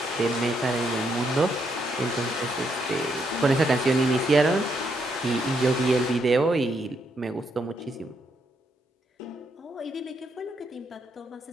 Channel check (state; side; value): normal; both; correlation 0.77